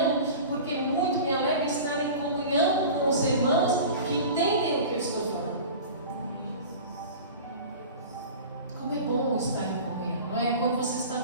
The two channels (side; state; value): both; inverted; correlation -0.36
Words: porque muito me alegra estar em comunhão com os irmãos que entendem o que eu estou falando. Como é bom estar em comunhão. Não é? Quando você